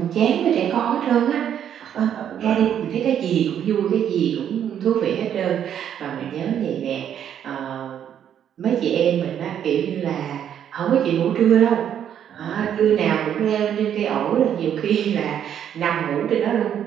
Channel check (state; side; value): quieter; left; 9.4 dB